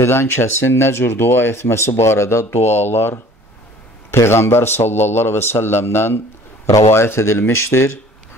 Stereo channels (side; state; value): both; normal; correlation 0.50